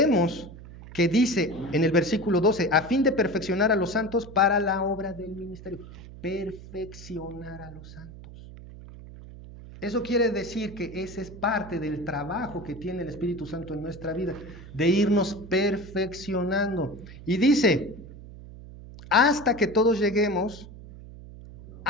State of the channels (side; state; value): right; noise; hum, 16 dB below the sound